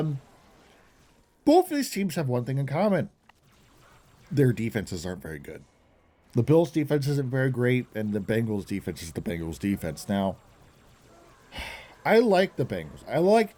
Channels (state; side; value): identical; both; correlation 1.00